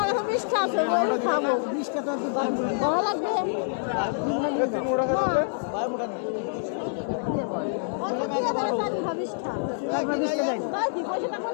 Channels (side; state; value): right; silent; digital silence